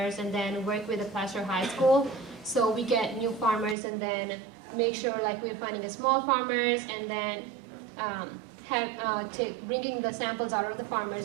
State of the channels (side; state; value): left; drops out; at 3.8 s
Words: and then work with the Placer High School. So we get new farmers, and then make sure like we're finding the small farmers, and then bringing the samples out of the